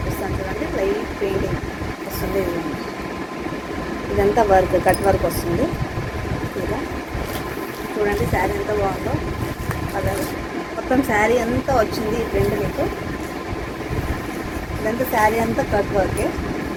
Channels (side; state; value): both; identical; correlation 1.00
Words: చూడండి. లైట్ పెయింటింగ్ వస్తుంది. ఇదంతా వర్క్, కట్ వర్క్ వస్తుంది. ఇలా చూడండి శారీ ఎంత బాగుందో. కలర్ మొత్తం శారీ అంతా వచ్చింది. ఈ ప్రింట్ మీకు ఇదంతా శారీ అంతా కట్ వర్కే.